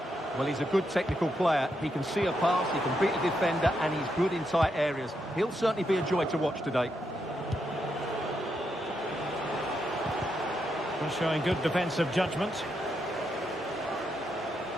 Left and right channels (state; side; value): normal; both; correlation 0.81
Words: Well, he's a good technical player. He can see a pass, he can beat a defender, and he's good in tight areas. He'll certainly be a joy to watch today. Well, showing good defensive judgment.